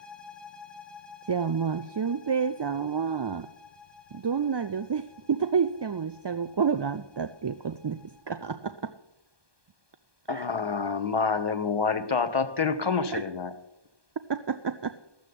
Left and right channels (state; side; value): late; left; 1.2 ms